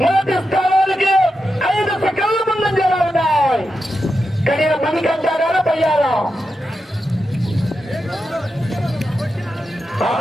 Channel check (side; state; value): both; normal; correlation 0.88